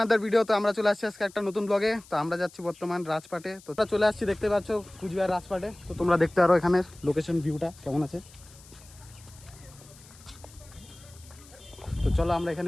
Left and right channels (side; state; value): left; noise; hiss, 23 dB below the sound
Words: video. তো আমরা চলে আসছি আজকে একটা নতুন ব্লগে। তো আমরা যাচ্ছি বর্তমান রাজপাটে। তো আমরা চলে আসছি, দেখতে পাচ্ছ কুচবিহার রাজপাটে। তো তোমরা দেখতে পারো এখানের লোকেশন ভিউটা কেমন আছে। তো চলো আমরা এখানে